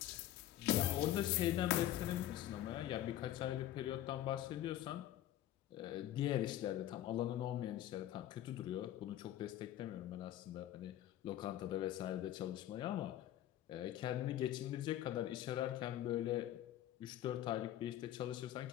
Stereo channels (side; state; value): right; quieter; 12.7 dB